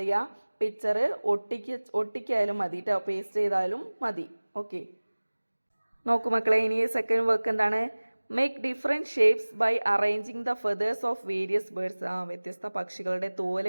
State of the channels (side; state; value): both; inverted; correlation -1.00